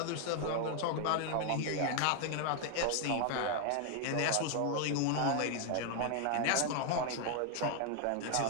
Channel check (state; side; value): different; both; correlation 0.00